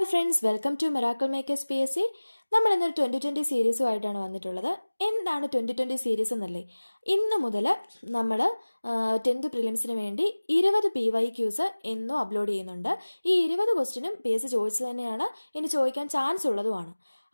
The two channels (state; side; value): inverted; both; correlation -1.00